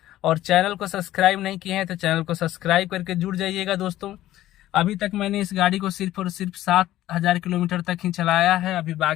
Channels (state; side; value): quieter; right; 14.3 dB